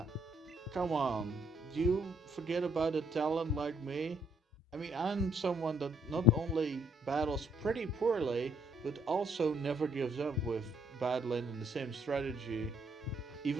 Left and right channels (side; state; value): both; normal; correlation 0.68